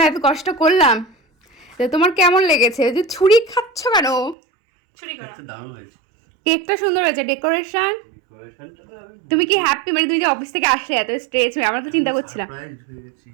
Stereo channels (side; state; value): left; drops out; at 4.4 s